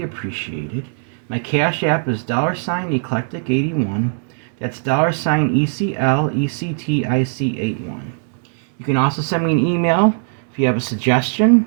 appreciated. My Cash App is $Eclectic81. That's $ECLECTIC81. You can also send me an email if you have a suggestion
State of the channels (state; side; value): silent; left; 66 dB below the other